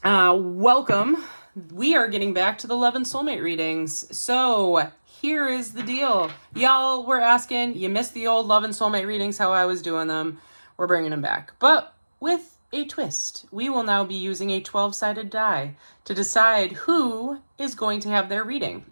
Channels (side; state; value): both; inverted; correlation -1.00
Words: Welcome. We are getting back to the Love and Soulmate readings. So here is the deal. Y'all were asking, you missed the old Love and Soulmate readings, how I was doing them. We're bringing them back. But with a twist. We will now be using a 12-sided die to decide who is going to have their reading,